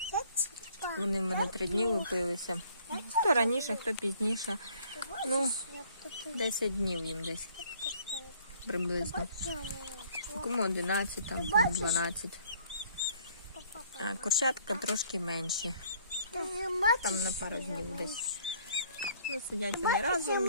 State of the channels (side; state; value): both; inverted; correlation -0.60